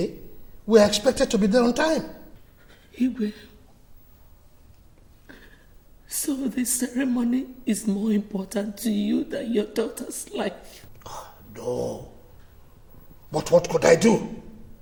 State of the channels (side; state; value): both; identical; correlation 1.00